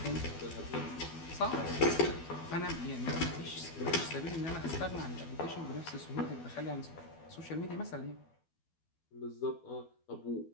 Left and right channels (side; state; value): right; late; 12 ms